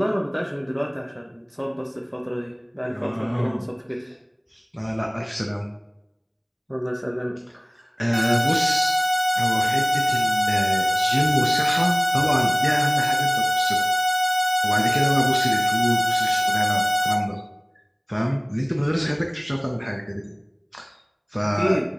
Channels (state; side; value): identical; both; correlation 1.00